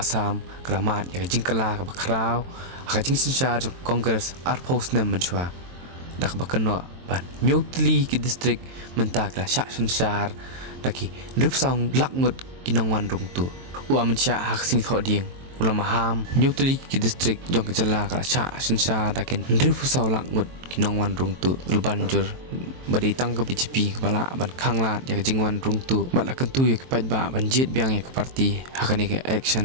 kelamat ya kajing kala ka bakrau kajing sinsha jok Congress arpos nem menchua dak bakeno ban nyotli ki district mentak la sha sinsar daki Rupang lakngut ki nongwan rungtu Amit Shah hak sing tho ding ulam Maham nyotli ki district jong kejala ka sha sinsar dakin Rupang lakngut ki nongwan rungtu lebanjur badi tang ke BJP kepala ban khanglat ya jingwan rungtu bat la kentu ya kepat ba banjit biang ya ke parti hakani ke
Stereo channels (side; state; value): left; late; 23 ms